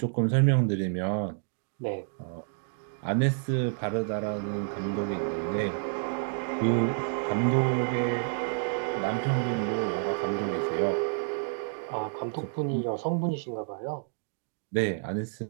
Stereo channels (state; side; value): silent; left; digital silence